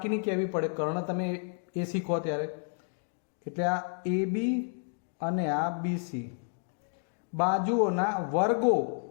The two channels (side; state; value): right; silent; 57 dB below the other